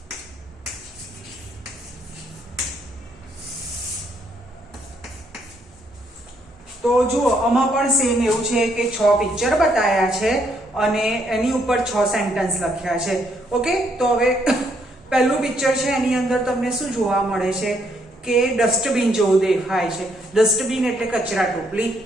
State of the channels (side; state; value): both; normal; correlation 0.72